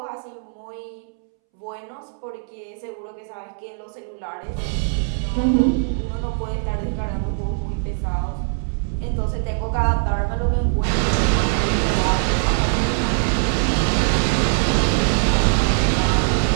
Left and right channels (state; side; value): silent; left; 64 dB below the other